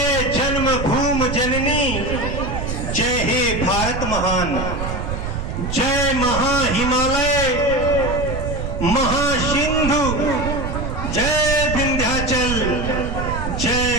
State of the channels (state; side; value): noise; right; rumble, 4 dB below the sound